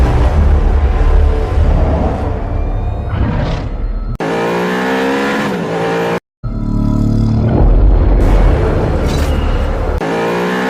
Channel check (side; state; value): both; identical; correlation 1.00